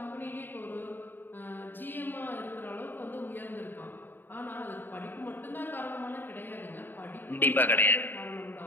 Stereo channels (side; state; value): right; late; 0.093 ms